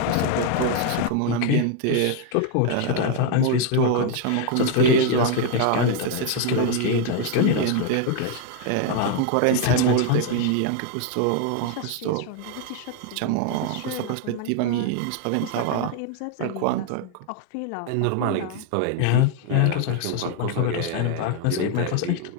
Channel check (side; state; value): both; different; correlation 0.01